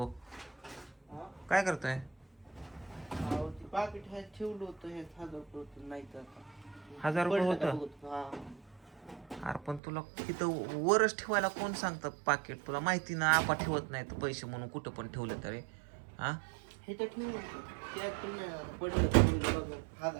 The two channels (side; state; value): left; drops out; at 9.8 s